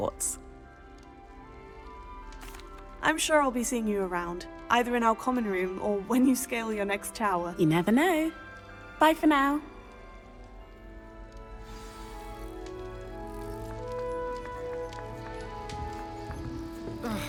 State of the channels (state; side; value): identical; both; correlation 1.00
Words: I'm sure I'll be seeing you around, either in our common room or when you scale your next tower. You never know. Bye for now.